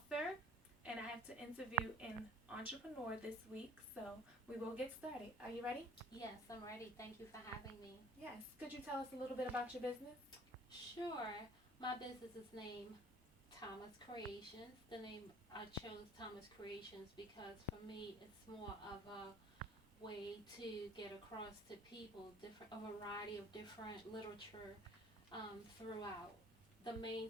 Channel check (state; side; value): normal; both; correlation 0.51